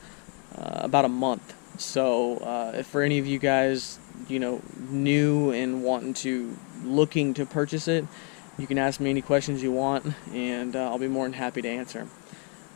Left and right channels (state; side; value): quieter; right; 38.4 dB